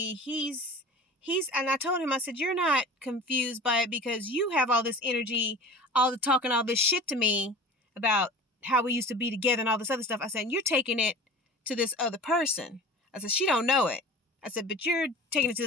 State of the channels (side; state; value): both; normal; correlation 0.38